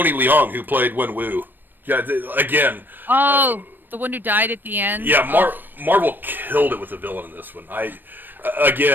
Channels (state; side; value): late; left; 0.093 ms